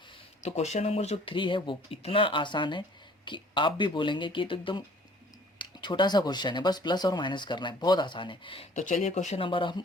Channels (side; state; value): both; normal; correlation 0.54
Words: तो क्वेश्चन नंबर जो 3 है वो इतना आसान है कि आप भी बोलेंगे कि ये तो एकदम छोटा सा क्वेश्चन है, बस प्लस और माइनस करना है, बहुत आसान है। तो चलिए क्वेश्चन नंबर